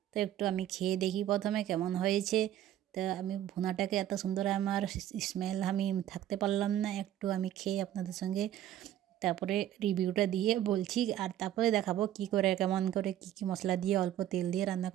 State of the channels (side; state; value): left; quieter; 11.8 dB